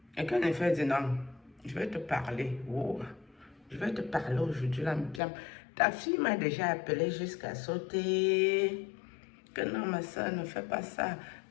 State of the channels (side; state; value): right; drops out; at 5.2 s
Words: Et quand il fait du nom, je vais te parler. Wow. Je vais te parler aujourd'hui, là, bien. Ta fille m'a déjà appelé jusqu'à sauter. Que non, ma soeur, ne fais pas ça.